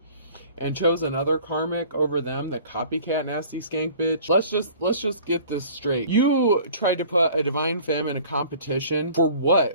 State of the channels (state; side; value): inverted; both; correlation -0.48